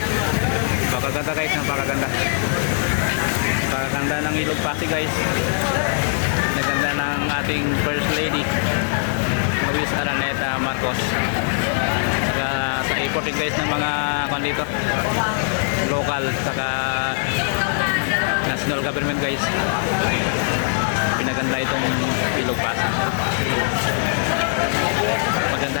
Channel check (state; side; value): silent; right; digital silence